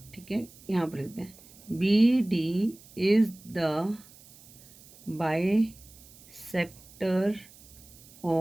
ठीक है। यहाँ पर लिखते हैं B D is the bisector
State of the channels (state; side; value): noise; right; hiss, 23 dB below the sound